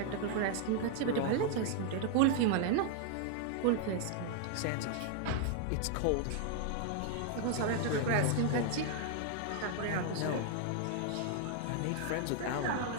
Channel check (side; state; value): both; different; correlation 0.00